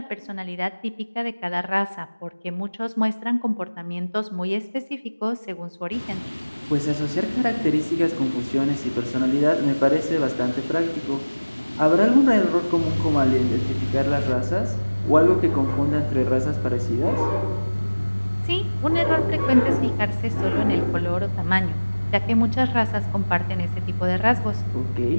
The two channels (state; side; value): inverted; both; correlation -1.00